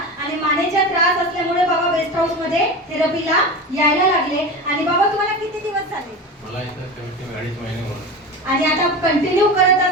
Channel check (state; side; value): normal; both; correlation 0.27